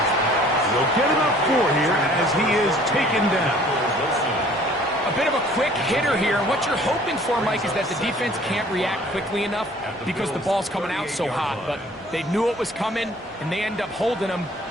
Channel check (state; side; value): normal; both; correlation 0.54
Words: He'll get about 4 here as he is taken down. A bit of a quick hitter here. What you're hoping for, Mike, is that the defense can't react quickly enough because the ball's coming out so hot. But they knew it was coming, and they end up holding them